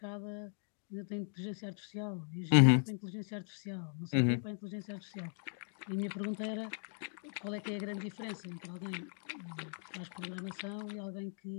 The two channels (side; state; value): right; silent; 53 dB below the other